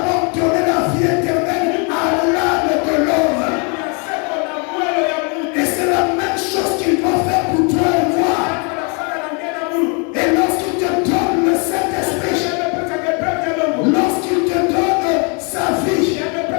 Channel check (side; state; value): right; quieter; 35.3 dB